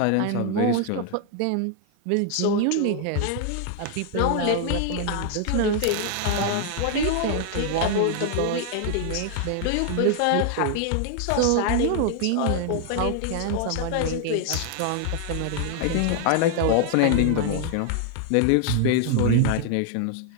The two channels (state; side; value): different; both; correlation 0.00